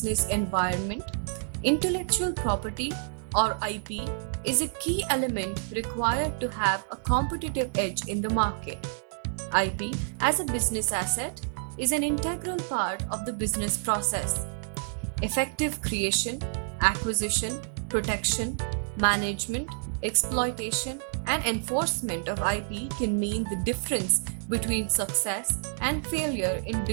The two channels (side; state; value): left; silent; digital silence